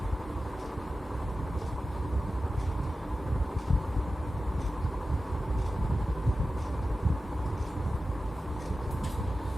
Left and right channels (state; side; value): normal; both; correlation 0.94